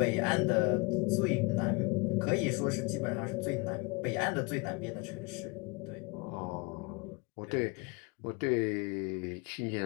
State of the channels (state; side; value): quieter; right; 28.1 dB